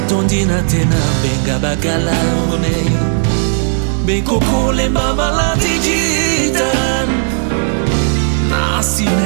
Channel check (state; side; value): silent; left; digital silence